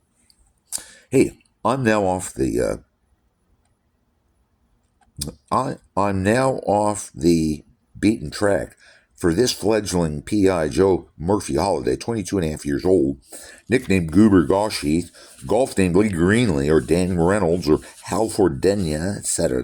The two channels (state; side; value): identical; both; correlation 1.00